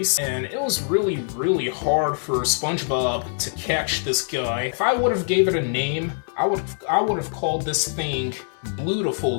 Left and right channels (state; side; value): silent; right; digital silence